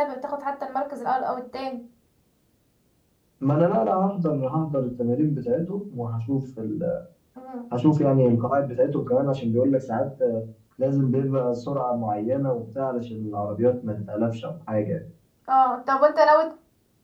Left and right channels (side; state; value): both; identical; correlation 1.00